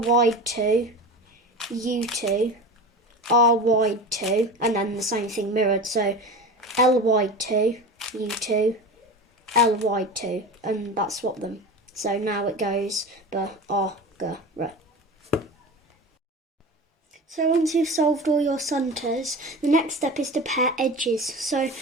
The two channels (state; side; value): normal; both; correlation 0.31